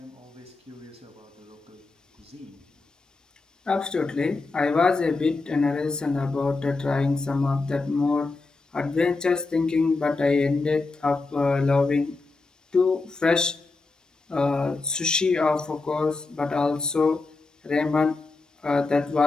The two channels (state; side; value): quieter; right; 3.7 dB